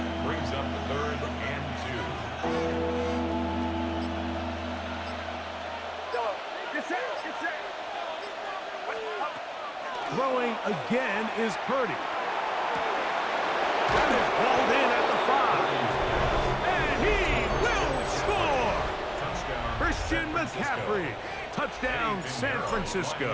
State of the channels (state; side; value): identical; both; correlation 1.00